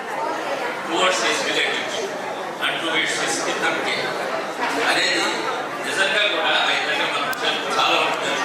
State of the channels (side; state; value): both; identical; correlation 1.00